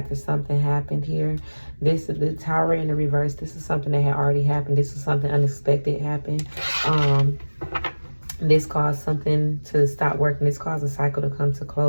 something happened here, this is the Tower in the reverse. This is something that had already happened. This is something unexpected happened. This caused something to stop working. This caused a cycle to come to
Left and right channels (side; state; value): both; inverted; correlation -1.00